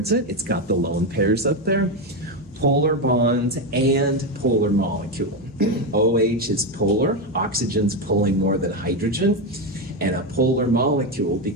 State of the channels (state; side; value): normal; both; correlation 0.11